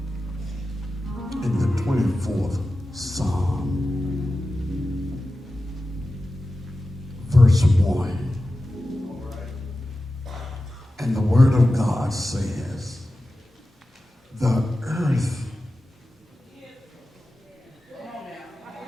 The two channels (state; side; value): normal; both; correlation 0.94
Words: In the 24th Psalm, verse 1. And the word of God says, the earth